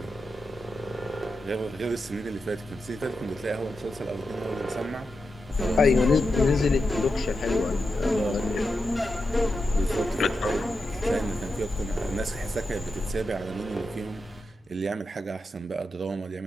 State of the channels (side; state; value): both; normal; correlation 0.88